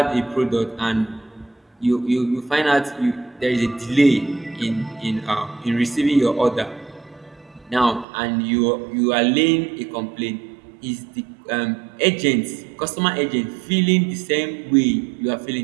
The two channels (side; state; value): left; drops out; at 8.1 s